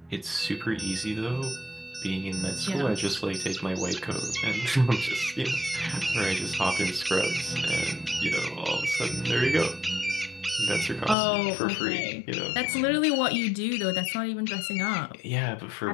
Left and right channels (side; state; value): right; drops out; at 11.2 s